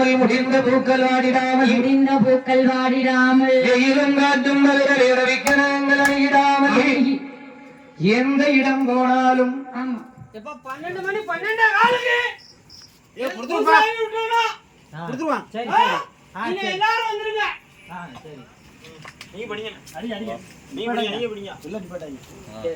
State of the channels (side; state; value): both; identical; correlation 1.00